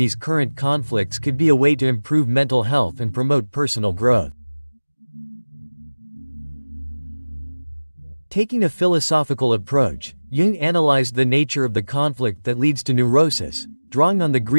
current conflicts could be a way to improve mental health and promote personal growth. Taking a philosophical approach, Jung analyzed the nature of the conflict that leads to neurosis, drawing on the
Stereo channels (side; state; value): both; inverted; correlation -1.00